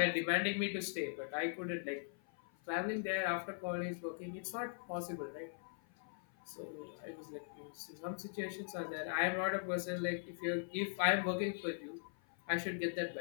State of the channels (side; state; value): right; silent; 51 dB below the other